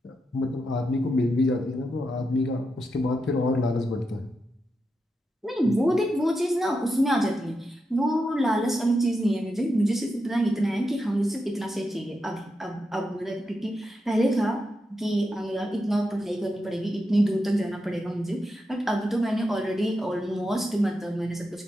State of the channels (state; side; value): normal; both; correlation 0.86